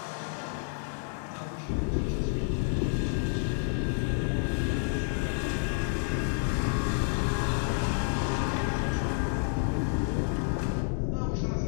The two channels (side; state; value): right; silent; 58 dB below the other